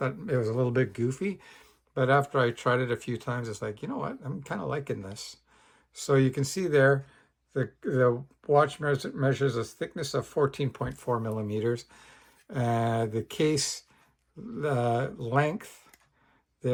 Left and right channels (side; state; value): both; identical; correlation 1.00